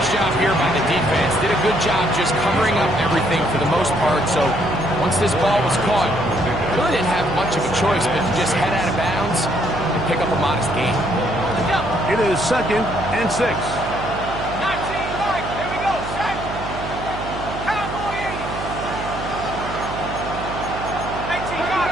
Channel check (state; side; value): noise; right; hum, 9 dB below the sound